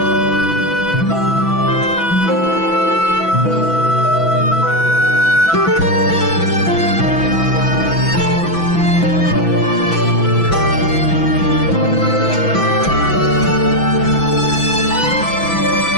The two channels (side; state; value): right; late; 6.0 ms